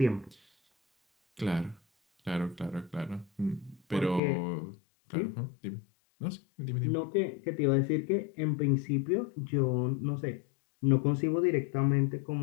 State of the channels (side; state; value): right; drops out; at 4.2 s